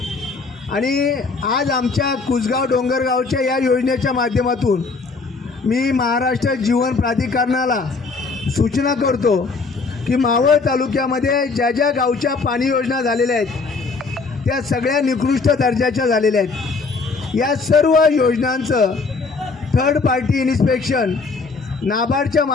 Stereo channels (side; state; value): right; quieter; 4.2 dB